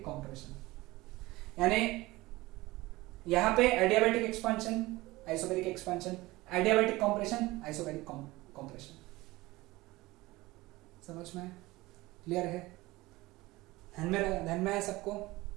compression. यानी यहां पे adiabatic expansion, isobaric expansion, adiabatic compression, isobaric compression. समझ में? क्लियर है? ध्यान में है सबको?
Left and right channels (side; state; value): left; quieter; 19.9 dB